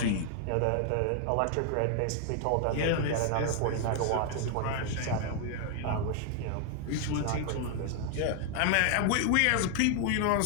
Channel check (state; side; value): different; both; correlation 0.00